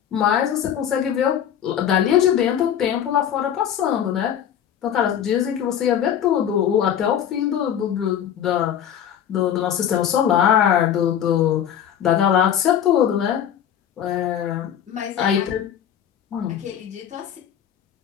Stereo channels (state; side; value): quieter; right; 9.5 dB